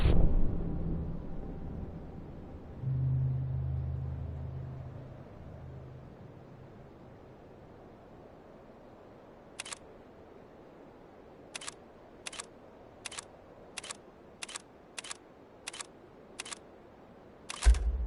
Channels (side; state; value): both; identical; correlation 1.00